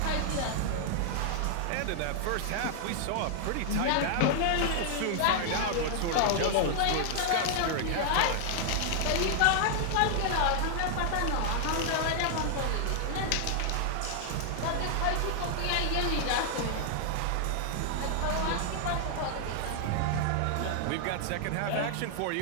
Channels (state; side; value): different; both; correlation -0.01